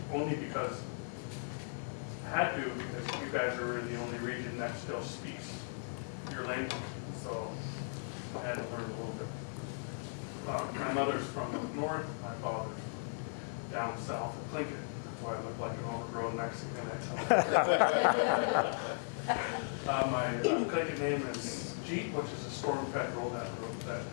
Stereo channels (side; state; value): right; silent; 53 dB below the other